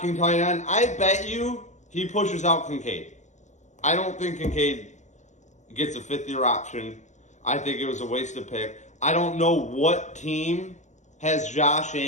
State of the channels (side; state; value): right; late; 0.34 ms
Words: tight end. I bet you he pushes out Kincaid. I don't think Kincaid gets a fifth-year option. I think it was a wasted pick. I don't know what team has Josh